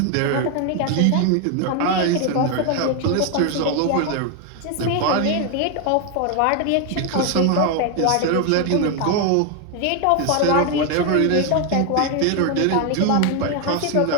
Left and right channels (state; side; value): different; both; correlation 0.01